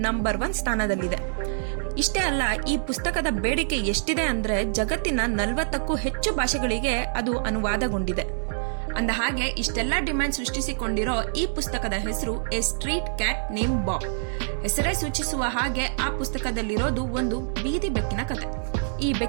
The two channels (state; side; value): silent; left; 61 dB below the other